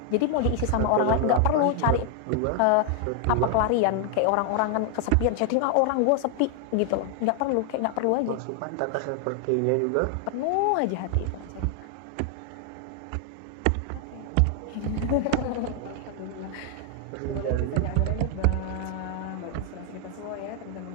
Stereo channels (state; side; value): different; both; correlation 0.00